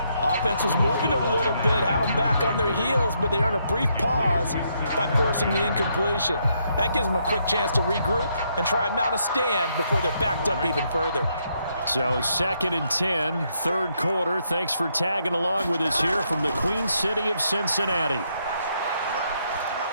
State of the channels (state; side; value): inverted; both; correlation -0.75